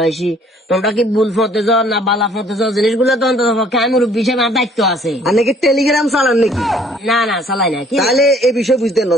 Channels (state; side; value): normal; both; correlation 0.58